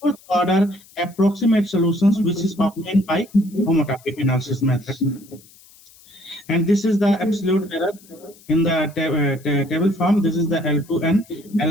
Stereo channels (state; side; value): noise; left; hiss, 25 dB below the sound